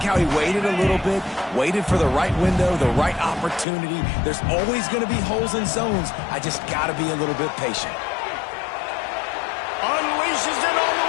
he waited a little bit, waited for the right window, the right opportunity. There's always going to be holes in zones. I just got to be a little bit patient. Unleashes it on the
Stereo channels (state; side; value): drops out; right; at 3.7 s